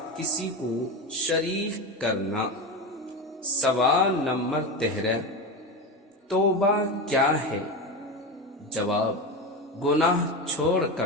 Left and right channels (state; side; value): normal; both; correlation 0.20